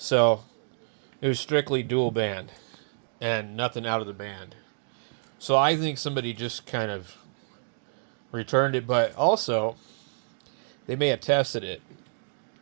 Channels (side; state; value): left; silent; digital silence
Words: it was strictly dual band and nothing out of the band. So I think somebody just kind of returned it, but also they may have tested it